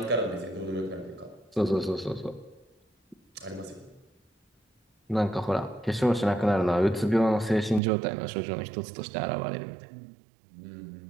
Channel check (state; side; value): drops out; left; at 7.8 s